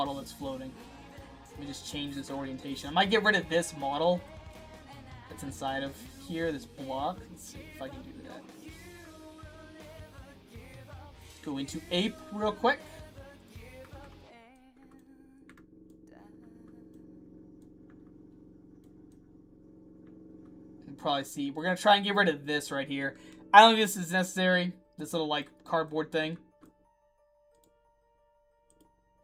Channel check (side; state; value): both; identical; correlation 1.00